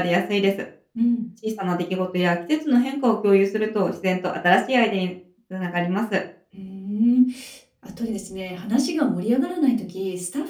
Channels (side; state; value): both; identical; correlation 1.00